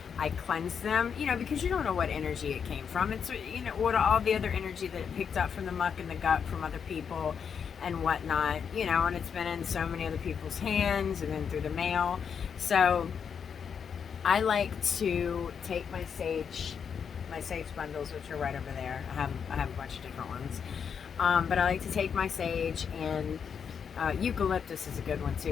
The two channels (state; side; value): quieter; right; 7.0 dB